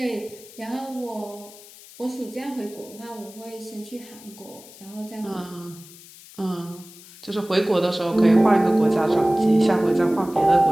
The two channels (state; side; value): noise; left; hiss, 20 dB below the sound